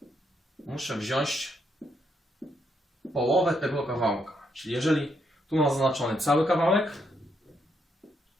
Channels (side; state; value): both; normal; correlation 0.76